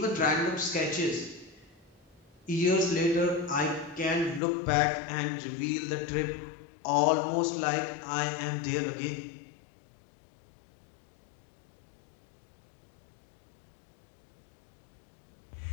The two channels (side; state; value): right; drops out; at 4.4 s